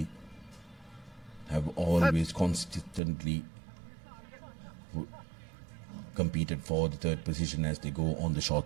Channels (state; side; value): drops out; left; at 3.0 s